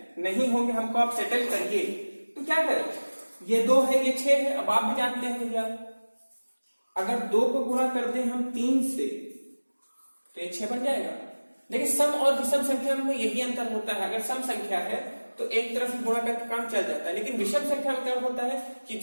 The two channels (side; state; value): both; inverted; correlation -1.00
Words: नहीं होंगे, हमको आप सेटल करिए। तो क्या करें? ये 2 है, ये 6 है। अब आप भी जानते हैं भैया अगर 2 को गुणा कर दें हम 3 से तो ये 6 बन जाएगा। लेकिन सम और विषम संख्या में यही अंतर होता है। अगर सम संख्या है तो एक तरफ गुणा करके काम चल जाता है, लेकिन विषम संख्या में क्या होता है कि